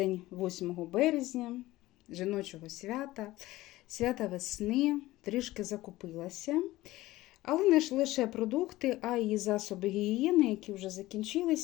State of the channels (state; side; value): quieter; right; 17.5 dB